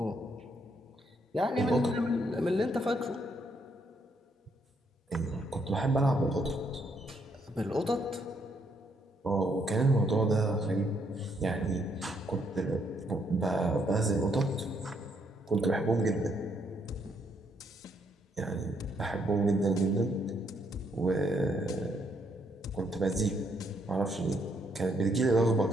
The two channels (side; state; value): both; normal; correlation 0.73